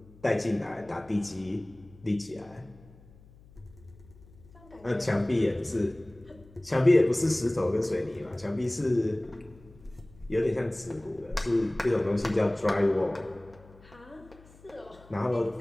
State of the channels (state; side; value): noise; left; hum, 24 dB below the sound